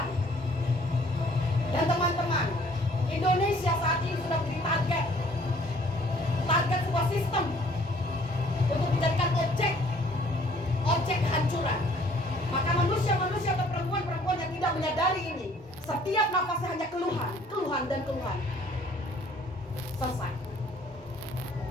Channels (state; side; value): normal; both; correlation 0.58